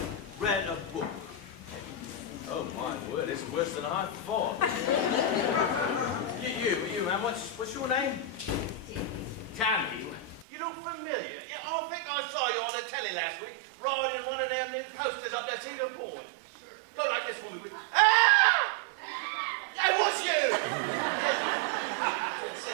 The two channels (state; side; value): drops out; left; at 10.5 s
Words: read a book? Oh my word, it's worse than I thought. you man, what's your name? Tammy. You look familiar. Yeah, I think I saw you on the telly last week riding one of them new coasters up that Cedar Point. Go like this for me, would you? Ah! That was you!